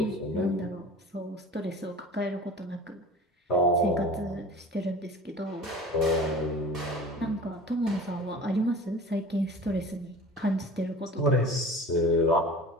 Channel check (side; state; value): both; normal; correlation 0.40